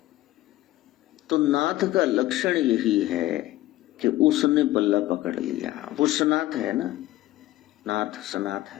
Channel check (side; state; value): right; quieter; 16.1 dB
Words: तो नाथ का लक्षण यही है कि उसने पल्ला पकड़ लिया। वो सनाथ है ना, नाथ सनाथ